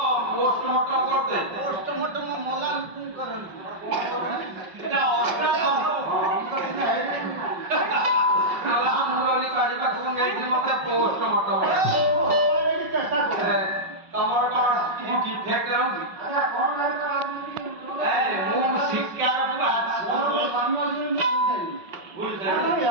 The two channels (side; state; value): left; late; 5.4 ms